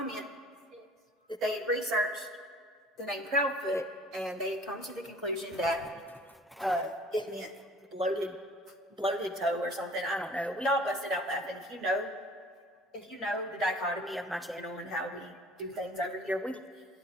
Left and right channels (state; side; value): normal; both; correlation 0.50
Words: that they had researched the name Proudfoot, and they had come to the conclusion that it meant bloated toe or something. I don't know. We all busted out laughing. If you know the dichotomy of my channel and how we do things over here,